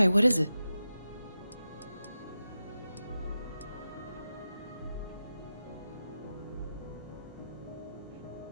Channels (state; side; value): inverted; both; correlation -0.91